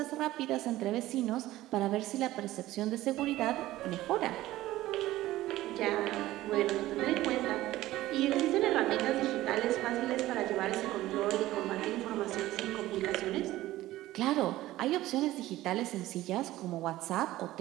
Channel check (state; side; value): quieter; left; 16.0 dB